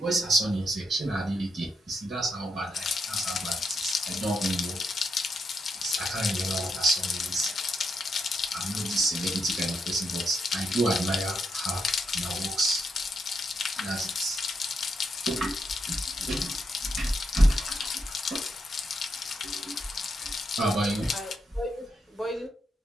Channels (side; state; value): both; normal; correlation 0.81